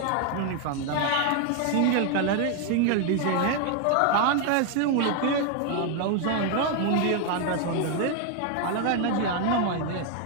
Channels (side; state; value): both; different; correlation 0.01